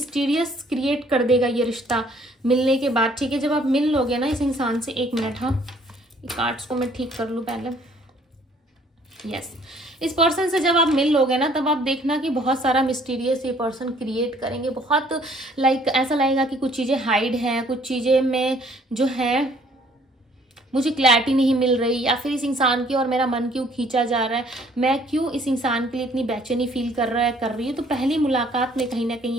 क्रिएट कर देगा ये रिश्ता मिलने के बाद। ठीक है, जब आप मिल लोगे ना इस इंसान से, 1 मिनट, हाँ ये कार्ड्स को मैं ठीक कर लूँ पहले। यस, इस पर्सन से जब आप मिल लोगे ना, तब आप देखना कि बहुत सारा मिस्टीरियस ये पर्सन क्रिएट करेंगे, बहुत लाइक ऐसा लगेगा कि कुछ चीज़ें हाइड हैं, कुछ चीज़ें में जो है मुझे क्लैरिटी नहीं मिल रही, या फिर इस इंसान की और मेरा मन क्यों खींचा जा रहा है, मैं क्यों इस इंसान के लिए इतनी बेचैनी फील कर रही हूँ। तो पहली मुलाकात में कहीं ना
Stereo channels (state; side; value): normal; both; correlation 0.60